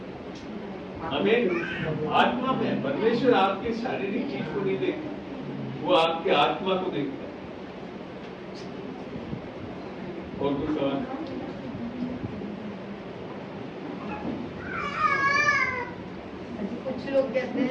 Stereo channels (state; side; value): identical; both; correlation 1.00